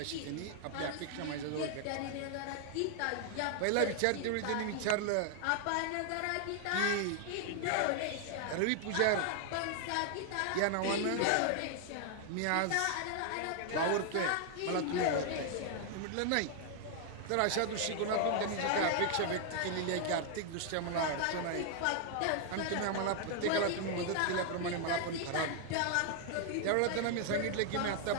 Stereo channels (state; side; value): different; both; correlation 0.00